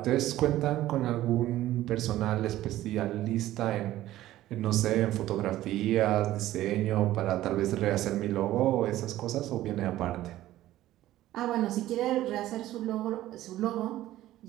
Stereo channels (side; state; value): left; quieter; 14.6 dB